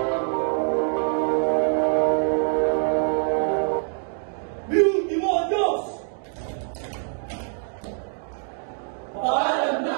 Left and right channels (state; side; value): silent; left; 59 dB below the other